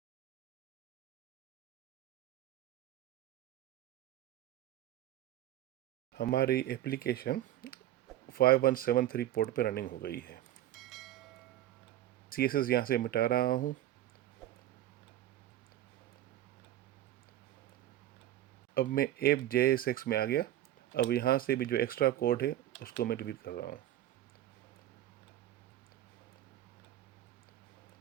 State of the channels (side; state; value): left; quieter; 13.2 dB